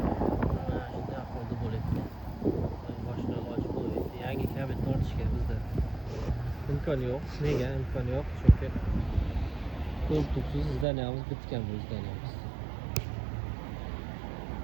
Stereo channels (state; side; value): drops out; left; at 10.9 s